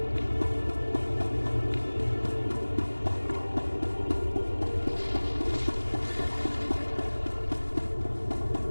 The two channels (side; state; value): both; inverted; correlation -1.00